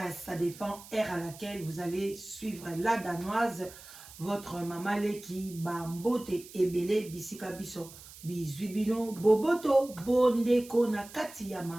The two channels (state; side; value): noise; right; hiss, 18 dB below the sound